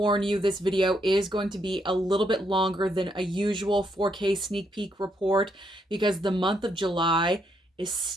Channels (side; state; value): both; normal; correlation 0.76